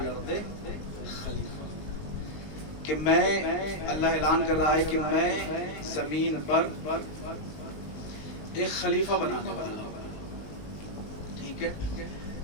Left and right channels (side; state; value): right; late; 19 ms